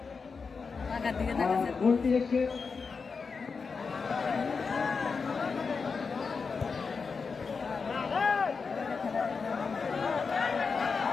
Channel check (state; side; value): quieter; right; 5.1 dB